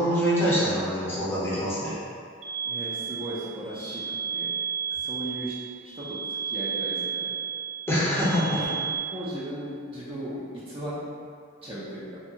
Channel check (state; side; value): normal; both; correlation 0.19